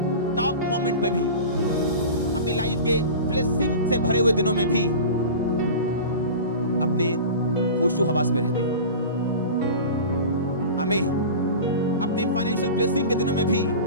टॉप मोमेंट पे भी, अपनी लाइफ के ब्लेसिंग से भरे हुए दिनों में भी अपने होशो हवास में रहते हैं। आमीन। अपने फाइनेंशियल ब्लेसिंग के दिनों में भी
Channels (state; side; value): inverted; both; correlation -0.34